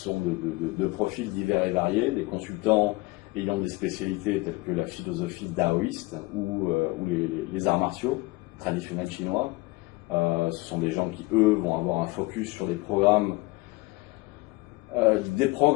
de profils divers et variés, des consultants ayant des spécialités telles que la philosophie taoïste ou les arts martiaux traditionnels chinois. Ce sont des gens qui, eux, vont avoir un focus sur des programmes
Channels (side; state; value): right; quieter; 22.1 dB